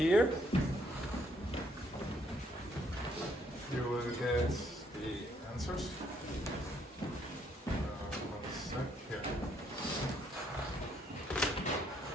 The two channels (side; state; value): both; normal; correlation 0.70